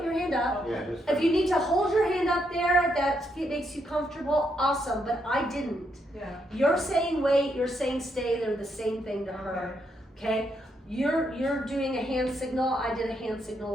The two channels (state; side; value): normal; both; correlation 0.78